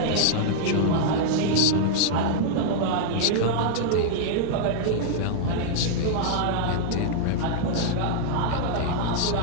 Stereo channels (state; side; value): different; both; correlation -0.01